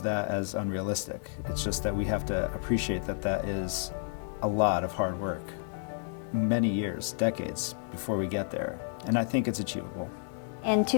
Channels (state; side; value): silent; right; 57 dB below the other